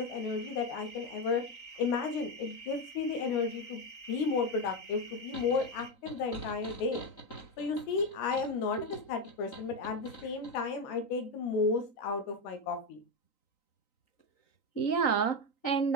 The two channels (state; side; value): late; right; 3.9 ms